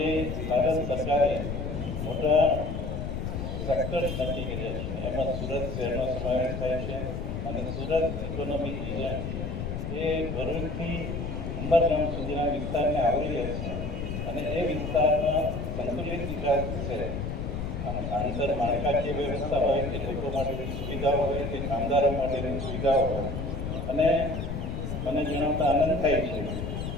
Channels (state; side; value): noise; left; rumble, 4 dB below the sound